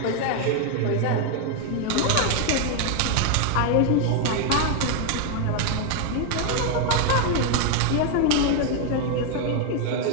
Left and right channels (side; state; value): both; different; correlation 0.00